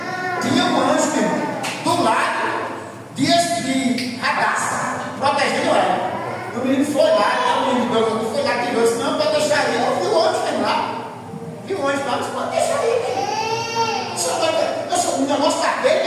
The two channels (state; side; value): identical; both; correlation 1.00